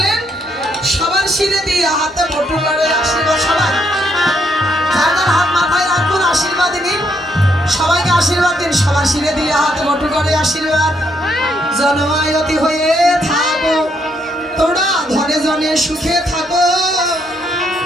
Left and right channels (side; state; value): both; normal; correlation 0.74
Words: সবার শিরে দিয়ে হাতে বটু লড়ে আশীর্বাদ। সবাই যার যার হাত মাথায় রাখুন, আশীর্বাদ নিন, সবাইকে আশীর্বাদ দিন। সবার শিরে দিয়ে হাতে বটু করে আশীর্বাদ। জনমায়তি হয়ে থাকো তোমরা, ধনে জনে সুখে থাকো,